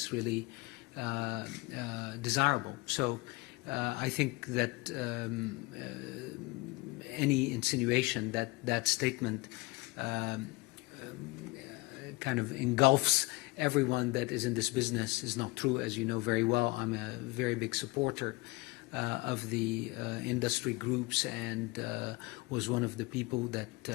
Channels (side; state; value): right; quieter; 23.3 dB